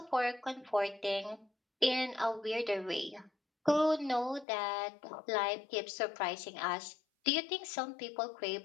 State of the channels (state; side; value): drops out; right; at 4.5 s